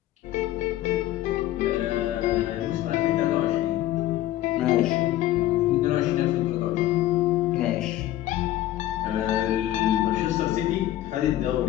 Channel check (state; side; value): quieter; right; 14.3 dB